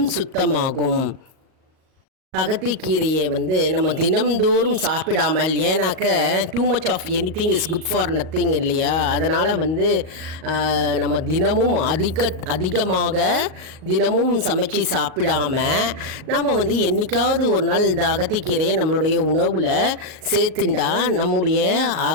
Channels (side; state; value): left; late; 38 ms